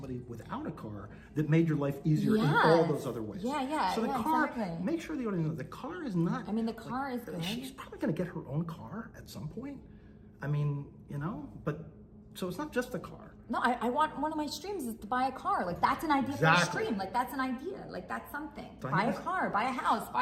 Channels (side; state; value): both; identical; correlation 1.00